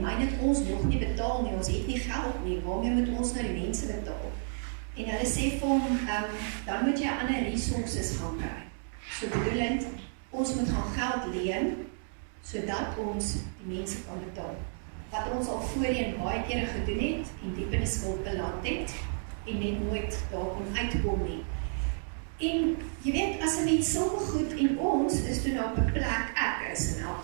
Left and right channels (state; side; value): silent; left; digital silence